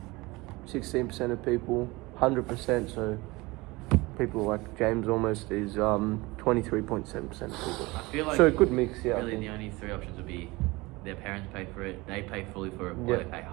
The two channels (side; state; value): left; quieter; 22.6 dB